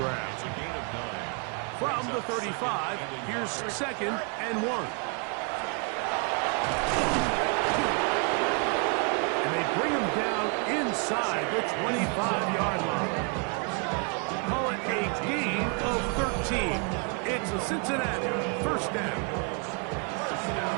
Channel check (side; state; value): left; quieter; 37.3 dB